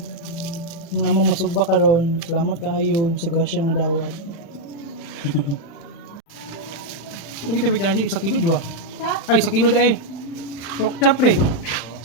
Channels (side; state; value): right; late; 36 ms